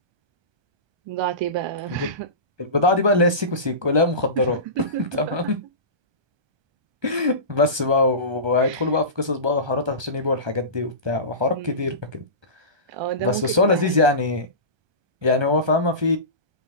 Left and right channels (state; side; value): late; left; 1.2 ms